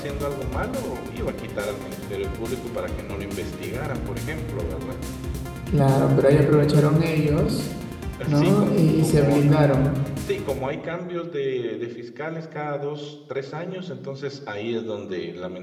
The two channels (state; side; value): identical; both; correlation 1.00